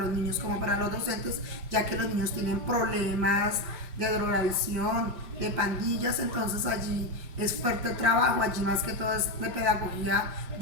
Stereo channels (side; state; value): left; late; 5.7 ms